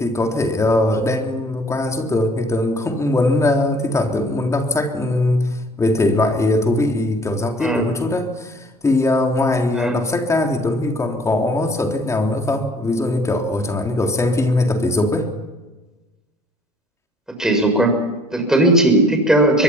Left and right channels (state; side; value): normal; both; correlation 0.56